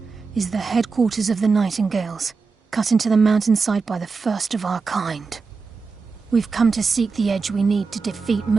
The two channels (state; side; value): quieter; left; 4.6 dB